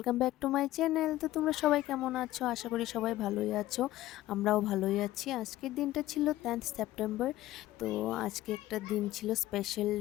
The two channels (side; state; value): right; quieter; 15.5 dB